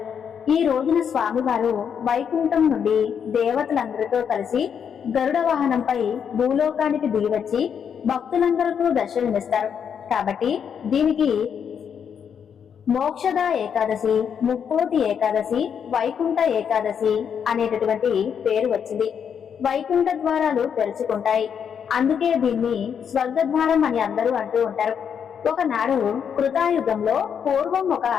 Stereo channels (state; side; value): quieter; right; 7.6 dB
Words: ఈ రోజున స్వామివారు వైకుంఠం నుండి దేవతలందరితో కలిసి గరుడ వాహనంపై భూలోకానికి దిగివచ్చి భక్తులందరికీ దర్శనమిస్తారు. కాబట్టి దీనికి మోక్షద ఏకాదశి, ముక్కోటి ఏకాదశి, వైకుంఠ ఏకాదశి అనేటటువంటి పేరు వచ్చింది. వైకుంఠ ద్వారాలు తెరుచుకుంటాయి. అందుకే దీన్ని స్వర్గద్వారం అని అందరూ అంటూ ఉంటారు. ఒకనాడు కృతాయుగంలో పూర్వం ఒక